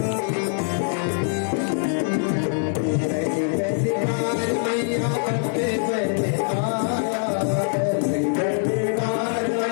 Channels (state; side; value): silent; right; digital silence